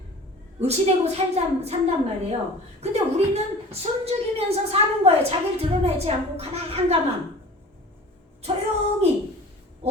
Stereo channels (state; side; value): normal; both; correlation 0.41